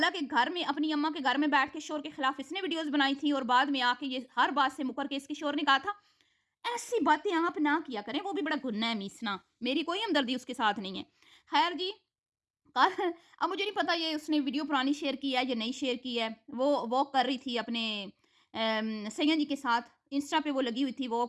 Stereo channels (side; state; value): both; identical; correlation 1.00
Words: घर में अपनी अम्मा के घर में बैठ के शोर के खिलाफ इसने वीडियोस बनाई थी, और बाद में आके ये हर बात से मुकर के इसके शोर ने कहा था ऐसी बातें आप ना किया करें, वो भी बड़ा गुन्ना है मीसना, मेरी कोई हमदर्दी उसके साथ नहीं है। खैर जी, कल अब मुझे नहीं पता ये उसने वीडियो पुरानी शेयर की है या नहीं शेयर की है। वो वॉक कर रही थी अपने सैयद जी के साथ, इंस्टा पे वो लगी हुई थी